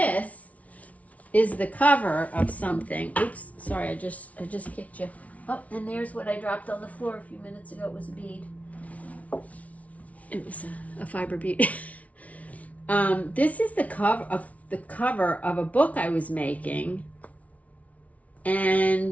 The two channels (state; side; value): late; right; 0.068 ms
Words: is the cover of something. Oops, sorry, I just kicked you. Oh, and there's what I dropped on the floor a few minutes ago. It was a bead. It was a fiber bead. This is the cover of a book I was making.